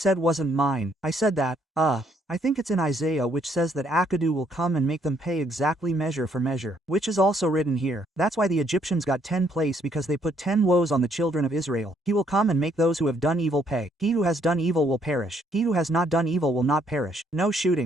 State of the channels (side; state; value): both; normal; correlation 0.69